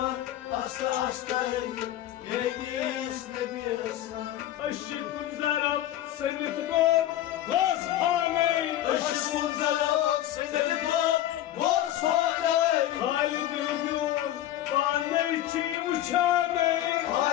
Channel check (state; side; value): quieter; right; 13.1 dB